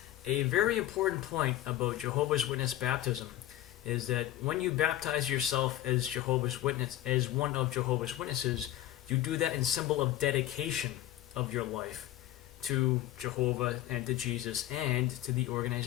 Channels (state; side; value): quieter; right; 13.9 dB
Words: A very important point about Jehovah's Witness baptism is that when you baptize yourself as Jehovah's Witness, as one of Jehovah's Witnesses, you do that in symbol of dedication of your life to Jehovah and to Jesus and to the